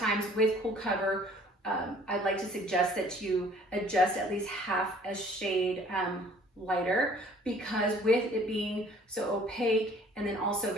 with Cool Cover, I'd like to suggest that you adjust at least half a shade lighter, because with it being so opaque and then also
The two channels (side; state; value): both; normal; correlation 0.55